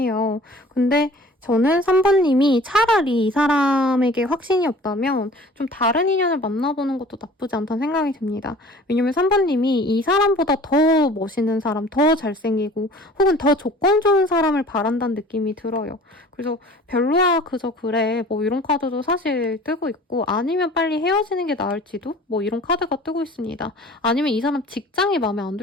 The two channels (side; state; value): both; normal; correlation 0.47